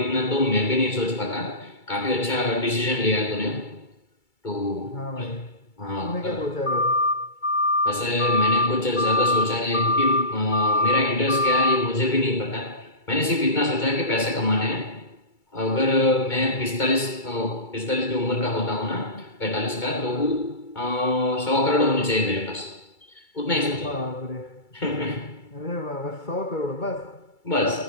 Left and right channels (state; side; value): late; right; 2.3 ms